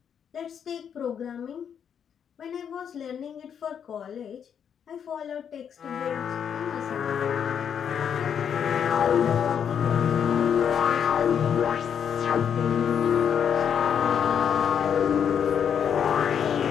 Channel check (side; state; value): right; quieter; 8.0 dB